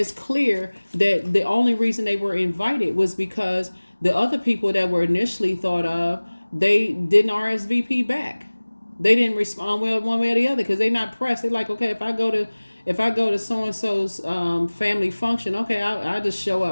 clear that the only reason they were invited was because the other people that were initially thought of, they didn't RSVP back. They didn't respond well one way or the other because they're not pressed. They're like, okay, if I go to so and so's family function, okay, I just show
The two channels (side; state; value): both; inverted; correlation -1.00